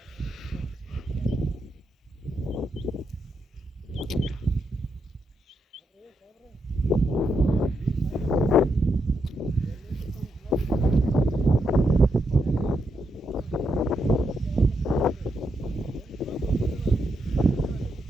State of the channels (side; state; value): both; normal; correlation 0.81